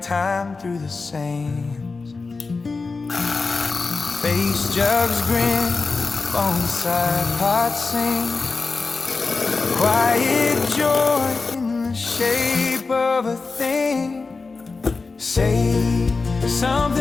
time through the sands. Face jugs grin, bonsai pots sing, quiet joy in the shape of a thing. Say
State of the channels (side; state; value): right; quieter; 4.1 dB